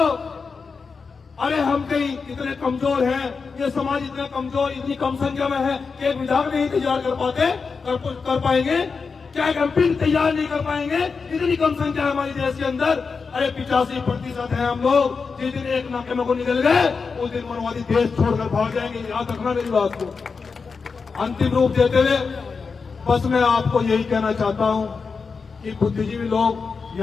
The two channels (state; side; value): quieter; right; 5.0 dB